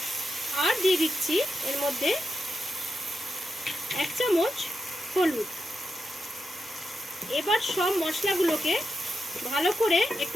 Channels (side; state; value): both; normal; correlation 0.87